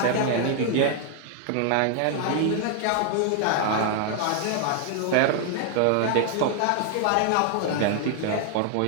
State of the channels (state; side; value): different; both; correlation 0.00